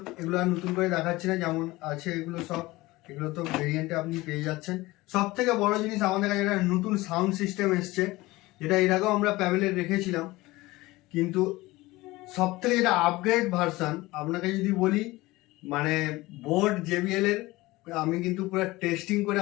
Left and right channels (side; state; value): right; quieter; 19.9 dB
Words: এগুলো আর নতুন করে দেখাচ্ছি না, যেমন আছে এগুলো সব, এগুলো তো ভেরিয়েন্টে আপনি পেয়ে যাচ্ছেন। সব থেকে বড় জিনিস আমাদের কাছে একটা নতুন সাউন্ড সিস্টেম এসছে, যেটা এর আগেও আমরা প্যাভেলে রেখেছিলাম, কিন্তু সব থেকে যেটা আপগ্রেড ভার্সান আপনাকে যদি বলি, মানে বোট জেবিএল এর, আমি কিন্তু পুরো টেস্টিং করে